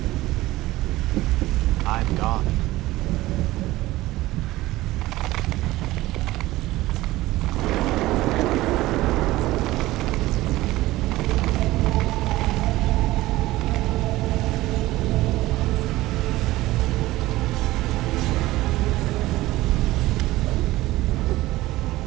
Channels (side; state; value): left; quieter; 17.6 dB